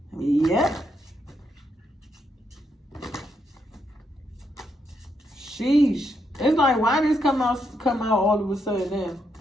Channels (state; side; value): normal; both; correlation 0.79